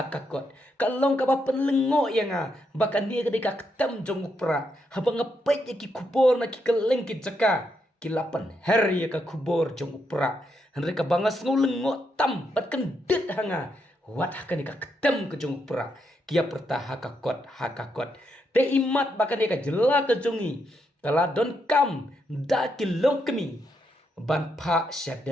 kalong ka ba penlengo ya nga bakan dia ke deka ketem jong pra habanga pe ki kubor na ki keleng ki jaka kilapan her ya ka kubor jong pra henreka bangas ngulengo tam bat kendit hanga wat hakan ka ketem ke jong pra kia perta hakakot te imat bakan dia ka jela ke jongi kala don kam da kilong kemi ban pa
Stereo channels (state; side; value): normal; both; correlation 0.80